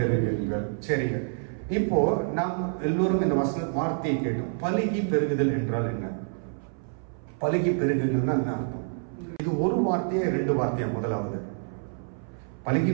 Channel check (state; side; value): silent; left; 58 dB below the other